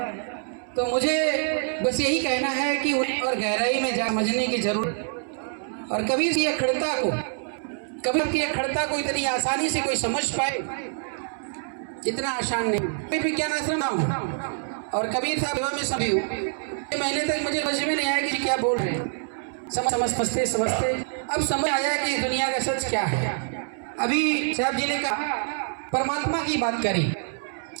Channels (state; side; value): silent; left; 61 dB below the other